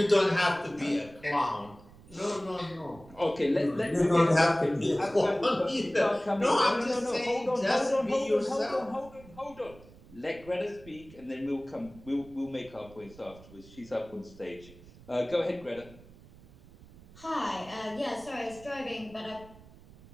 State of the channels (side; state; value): right; noise; rumble, 22 dB below the sound